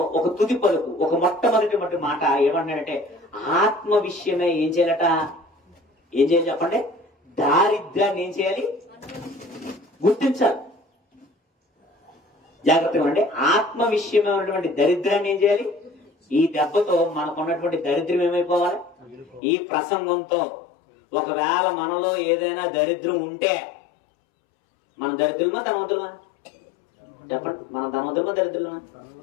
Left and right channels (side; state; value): right; drops out; at 19.4 s